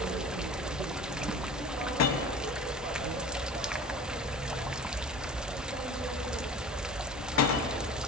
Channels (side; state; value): both; normal; correlation 0.37